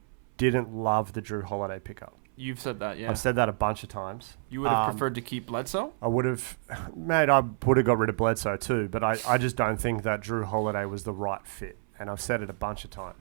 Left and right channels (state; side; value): silent; left; 59 dB below the other